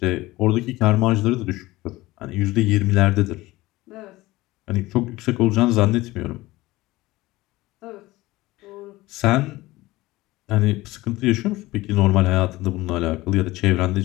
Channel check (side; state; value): right; quieter; 19.0 dB